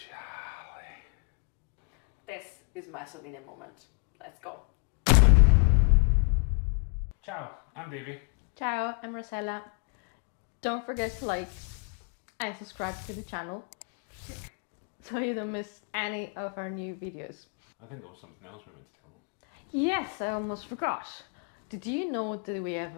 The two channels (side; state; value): right; quieter; 37.2 dB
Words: This is my Sardinian moment. Let's go. Ciao, I'm Davey. Ciao, I'm Rosella. Don't forget to like and subscribe to the channel. Click. So you don't miss any of our new videos. I think there was something else we meant to tell them. Yes, I almost forgot. Did you know that we have